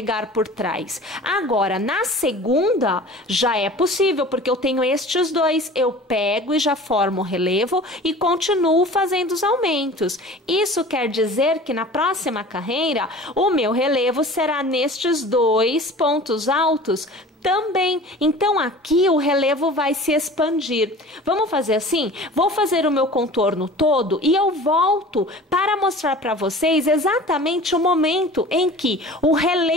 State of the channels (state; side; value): normal; both; correlation 0.41